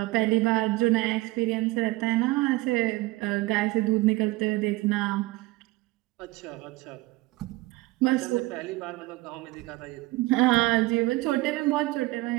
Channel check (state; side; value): quieter; left; 20.4 dB